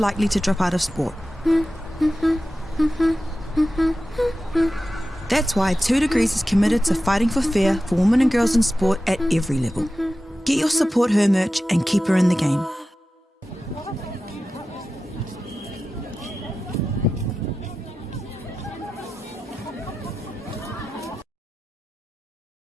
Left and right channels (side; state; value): both; normal; correlation 0.93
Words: to drop out of sport. That's why 2 Degrees is committed to fighting for fair for women and girls in sport at every level. Get your Support Her merch and keep her in the game.